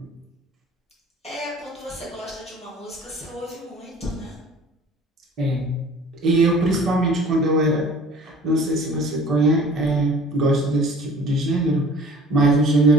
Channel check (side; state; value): both; normal; correlation 0.48